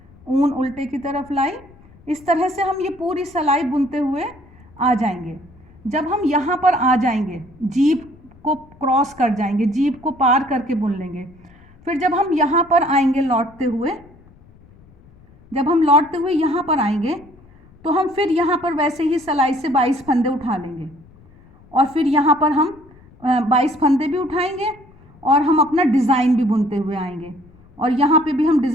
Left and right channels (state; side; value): noise; left; rumble, 26 dB below the sound